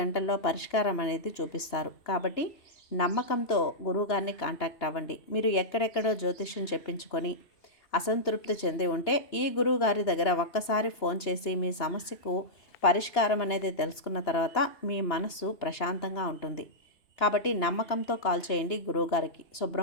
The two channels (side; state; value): right; late; 2.9 ms